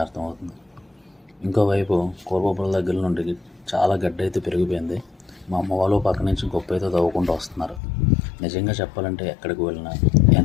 అర్థమవుతుంది. ఇంకోవైపు కూరబొబ్బల దగ్గర నుండి చాలా గడ్డ అయితే పెరిగిపోయింది. మా అమ్మ వాళ్ళు పక్క నుంచి గొప్ప అయితే తవ్వుకుంటూ వస్తున్నారు. నిజంగా చెప్పాలంటే ఎక్కడికి వెళ్ళినా,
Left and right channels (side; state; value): right; drops out; at 7.8 s